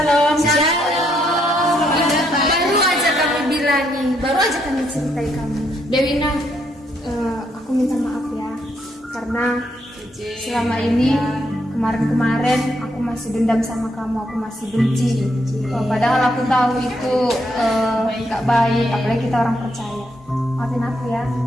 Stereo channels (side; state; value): both; normal; correlation 0.75